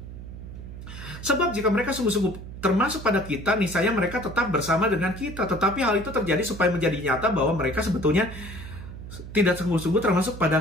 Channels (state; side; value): noise; right; hum, 12 dB below the sound